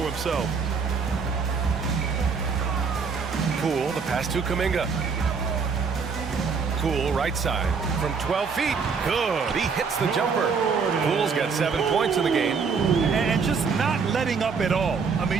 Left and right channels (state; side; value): quieter; left; 5.5 dB